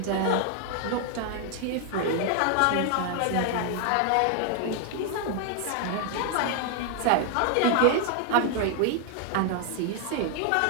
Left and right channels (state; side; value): different; both; correlation 0.00